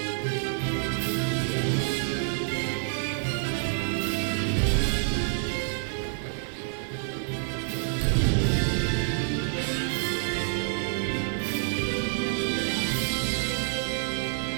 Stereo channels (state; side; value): silent; left; digital silence